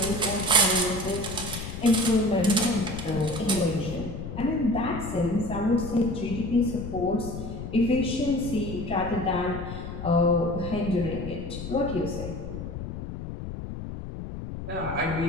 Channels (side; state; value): left; noise; rumble, 8 dB below the sound